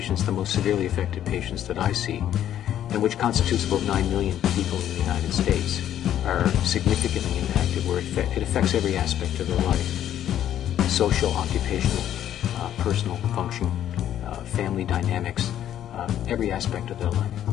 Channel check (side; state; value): right; quieter; 11.0 dB